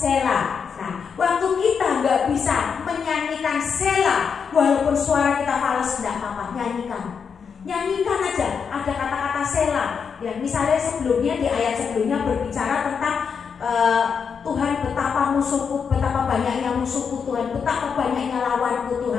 Nah, waktu kita nggak bisa menyanyikan Sela, walaupun suara kita fals, tidak apa-apa, nyanyikan aja. Ada kata-kata Sela. Ya, misalnya sebelumnya di ayat sebelumnya berbicara tentang Tuhan betapa musuhku, betapa banyaknya musuhku Tuhan, betapa banyaknya lawanku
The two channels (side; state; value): right; quieter; 6.3 dB